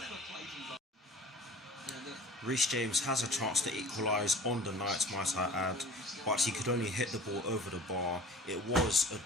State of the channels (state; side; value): normal; both; correlation 0.43